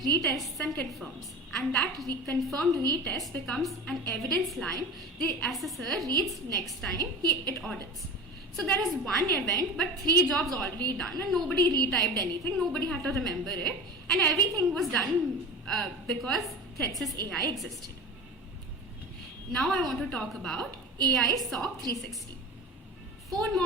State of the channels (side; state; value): both; normal; correlation 0.32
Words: retests and confirms. And that confirmed retest becomes an evidence line the assessor reads next time it audits. So there is one event, but 3 jobs already done, and nobody retyped anything, nobody had to remember it, and everything was done because ThreatSys AI existed. Now I want to talk about AI SOC 360. 4